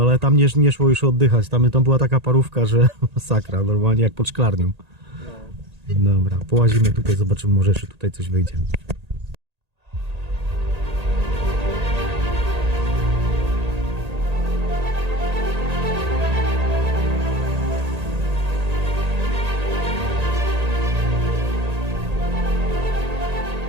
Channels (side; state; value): left; late; 1.8 ms